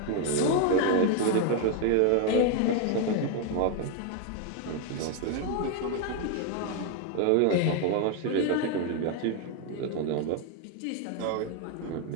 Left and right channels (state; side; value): different; both; correlation 0.01